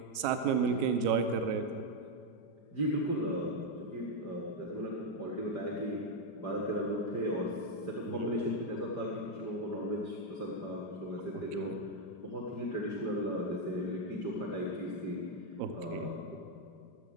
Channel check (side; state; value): right; late; 5.0 ms